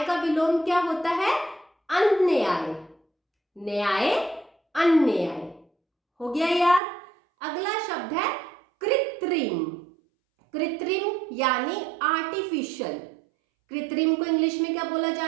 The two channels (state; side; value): drops out; left; at 6.8 s